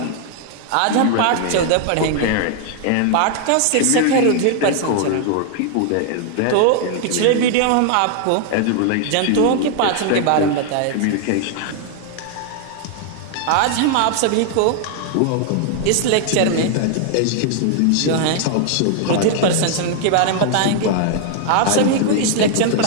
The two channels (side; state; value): both; different; correlation 0.00